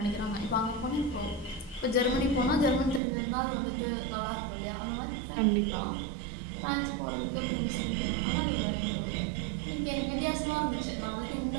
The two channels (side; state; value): left; drops out; at 3.0 s